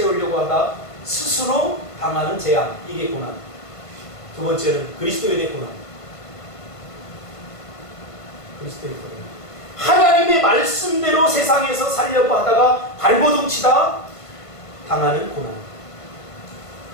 하다 스스로 당하는 재앙, 이게 고난. 두 번째는 그리스도인의 고난. 그리스도의 고난. 하나님의 말씀대로 세상에서 살려고 하다가 발버둥 치다 당하는 고난.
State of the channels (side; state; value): right; late; 1.5 ms